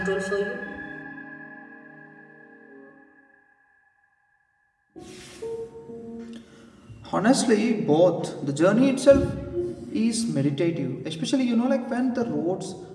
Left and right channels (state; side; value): identical; both; correlation 1.00